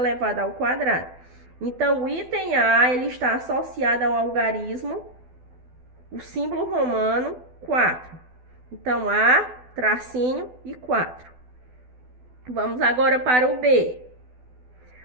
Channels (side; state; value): left; late; 12 ms